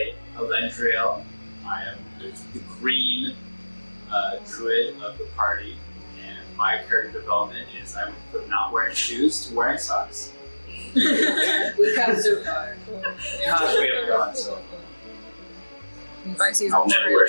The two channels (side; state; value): both; inverted; correlation -1.00